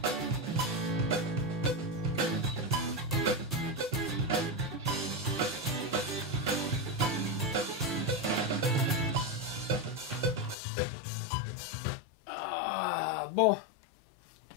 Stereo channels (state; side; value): drops out; right; at 10.6 s